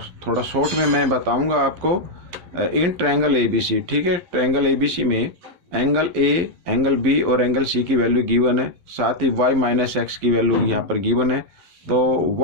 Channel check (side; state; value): left; late; 11 ms